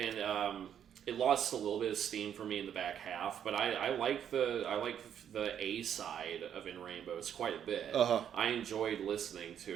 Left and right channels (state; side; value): quieter; left; 9.2 dB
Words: it lost a little bit of steam for me in the back half, but I like the A side of In Rainbows quite a bit. I enjoyed listening to